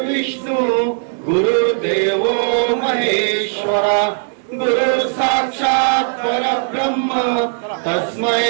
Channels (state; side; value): silent; left; digital silence